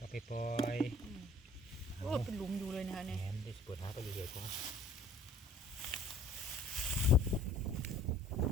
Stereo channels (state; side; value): normal; both; correlation 0.53